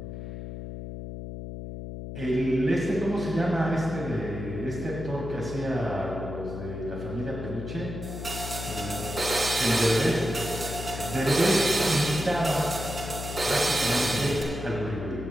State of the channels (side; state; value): left; noise; hum, 8 dB below the sound